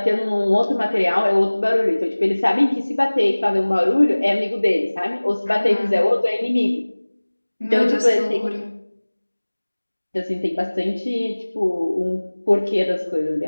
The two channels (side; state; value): both; inverted; correlation -1.00